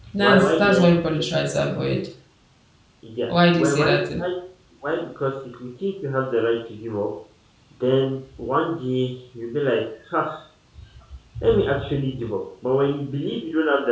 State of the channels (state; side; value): identical; both; correlation 1.00